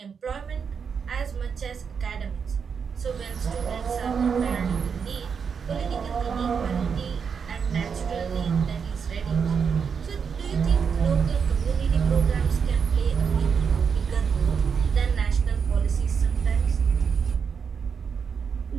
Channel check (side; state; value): left; quieter; 6.3 dB